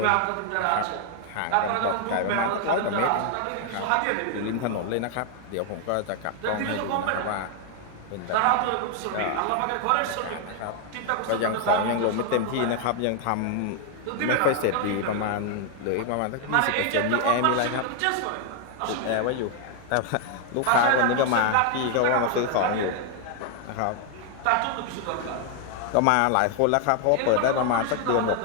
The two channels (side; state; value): both; different; correlation 0.00